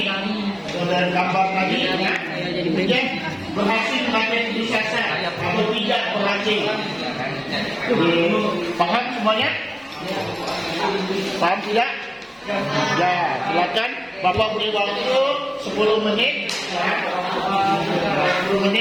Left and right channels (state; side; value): identical; both; correlation 1.00